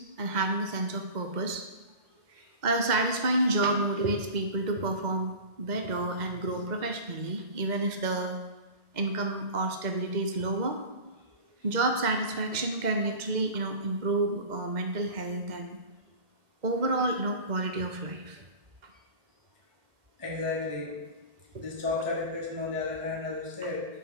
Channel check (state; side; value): late; left; 2.1 ms